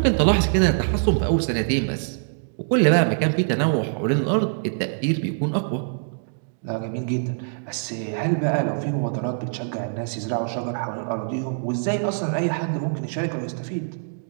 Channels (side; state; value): left; silent; digital silence